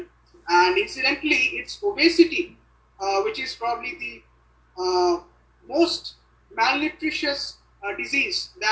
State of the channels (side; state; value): both; identical; correlation 1.00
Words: and incidentally, it's obesity which is probably the most malnutritious disease